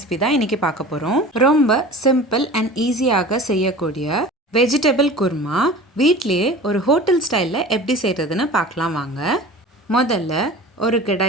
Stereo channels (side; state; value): both; normal; correlation 0.38